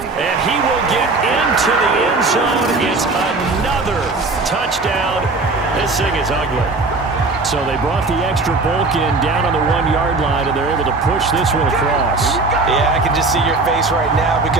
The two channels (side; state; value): left; quieter; 3.5 dB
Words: he will get into the end zone. It's another touchdown. This thing is ugly. So they brought the extra bulk in down on the 1-yard line, and they're able to push this one across. Yeah, I can just see your face right now